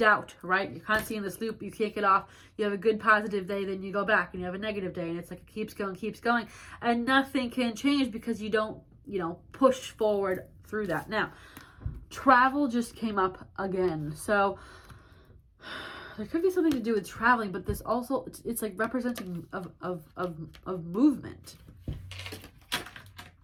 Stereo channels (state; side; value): identical; both; correlation 1.00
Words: right? You're constantly in this loop. You can't get off. You have a good positive day, then you go back and you have a negative day, and it's like it keeps going, and nothing can change because you don't, push forward through that. Now, travel just came up again. So there could be something to do with traveling, but this also, it's like representing of movement.